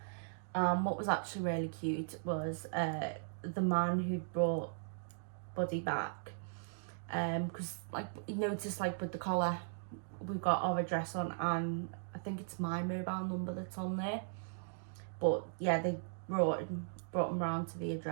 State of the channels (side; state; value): left; silent; digital silence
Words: What was actually really cute was the man who'd brought Buddy back, because like you noticed, like with the collar, we've got our address on, and I think it's my mobile number that's on there. But yeah, they brought him round to the